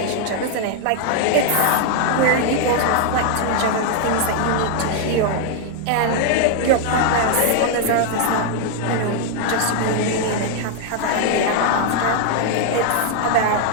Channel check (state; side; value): different; both; correlation 0.00